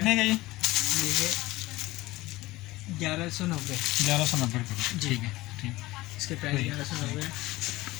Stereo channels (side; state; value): right; quieter; 19.0 dB